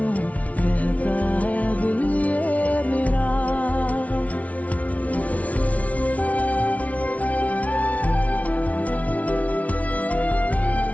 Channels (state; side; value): late; right; 0.068 ms